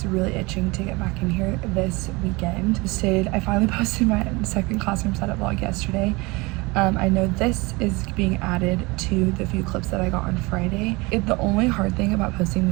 really itching to get back in here this weekend. I finally posted my second classroom setup vlog yesterday. I know this is being added to the few clips that I got on Friday. The only hard thing about posting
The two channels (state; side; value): quieter; left; 24.6 dB